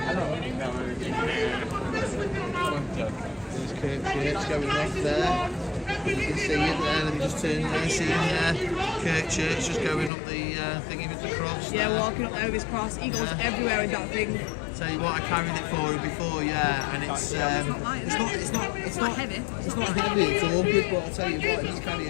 There's Kirk Church going off there. You can see it there, let me just turn there, see there. Kirk Church just going up the thingy with the cross. Yeah, there. walking up there with his cross. He goes everywhere with that thing. Tell you what, I carried it for her before, yeah, and it's not heavy. It's not heavy, it's awkward, but I'll tell you what, he's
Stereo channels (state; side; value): drops out; right; at 10.1 s